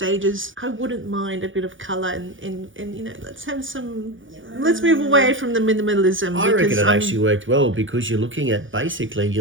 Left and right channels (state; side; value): late; left; 0.57 ms